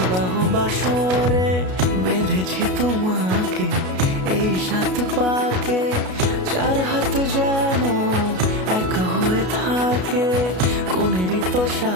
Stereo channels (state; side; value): late; left; 33 ms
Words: বাসরে। বেঁধেছি তোমাকে এই 7 পাকে, 4 হাত যেন এক হয়ে থাকে। কোনেরই তো